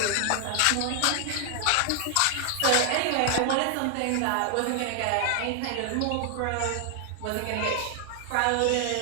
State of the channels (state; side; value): different; both; correlation 0.00